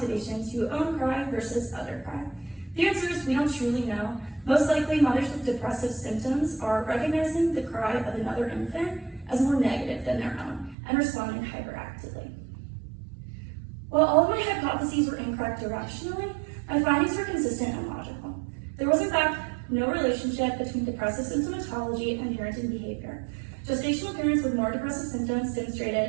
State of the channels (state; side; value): drops out; left; at 10.8 s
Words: to own cry versus other cry? The answer is we don't truly know. Most likely, mothers with depressive symptoms are recognizing the cry of another infant as more negative than their own and responding hyperactively. While all of my hypotheses were incorrect directionally, my findings were consistent and logical. There was, in fact, no relationship between depressive symptomatology and parenting behavior. Gestational parents with more depressive symptoms